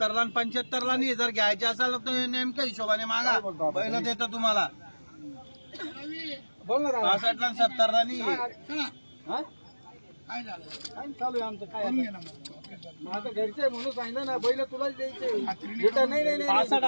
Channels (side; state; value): both; inverted; correlation -1.00